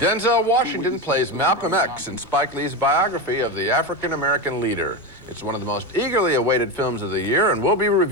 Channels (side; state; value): both; normal; correlation 0.17